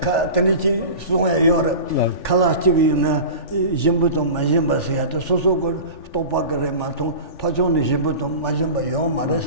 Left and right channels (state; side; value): late; right; 3.4 ms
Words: tanichi sunga yora kalachi na jimbuto majimba sia to soso ko topa kare ma to pachoni jimbuto majimba yo mares